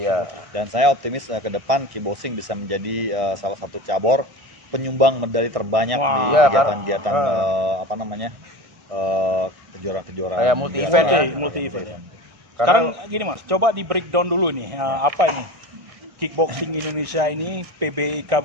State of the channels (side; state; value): left; late; 1.6 ms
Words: Dan saya optimis ke depan kickboxing bisa menjadi salah satu cabur penyumbang medali terbanyak Wah. di Iya, kegiatan-kegiatan kejuaraan-kejuaraan Kayak multi event ya. Multi event ya. Sekarang gini Mas, coba di breakdown dulu nih, apa ini kickboxing Indonesia ini, PBI